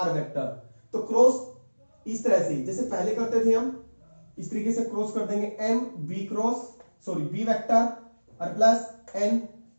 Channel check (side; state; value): both; inverted; correlation -1.00